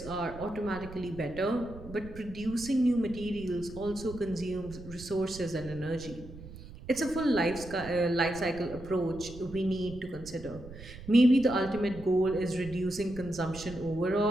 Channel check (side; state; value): right; noise; rumble, 15 dB below the sound